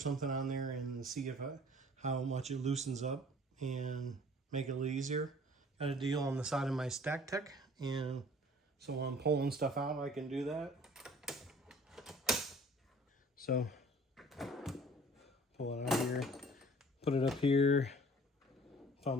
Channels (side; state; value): both; normal; correlation 0.51